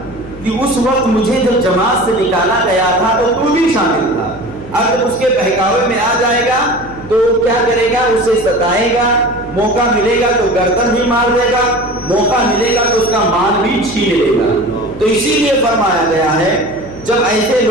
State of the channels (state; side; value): noise; left; hum, 17 dB below the sound